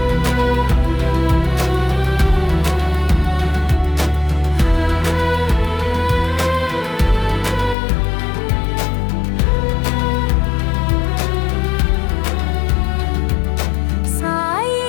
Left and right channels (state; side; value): drops out; right; at 7.8 s